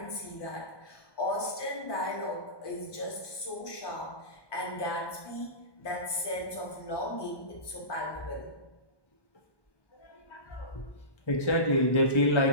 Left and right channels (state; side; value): late; right; 1.2 ms